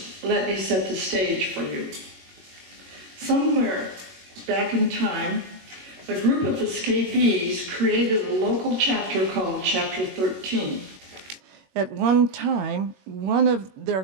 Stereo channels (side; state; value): left; late; 21 ms